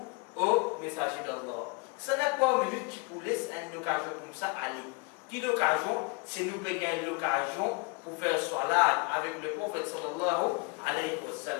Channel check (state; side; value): quieter; right; 29.7 dB